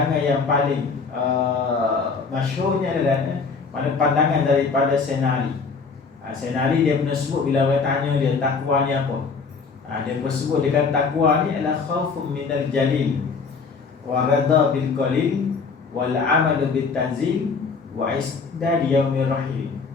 yang paling masyhurnya adalah pandangan daripada Senari. Senari dia pernah sebut bila orang tanya dia takwa ni apa. Dia pun sebut dia kata takwa ni adalah khaufun minal jalil wa radha bil qalil wal amalu bit tanzil wa isdad yaumir rahim.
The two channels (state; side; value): quieter; right; 4.9 dB